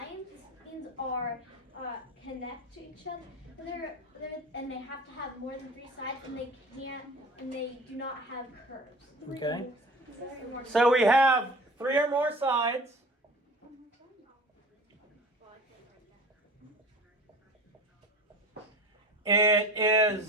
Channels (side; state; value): both; normal; correlation 0.38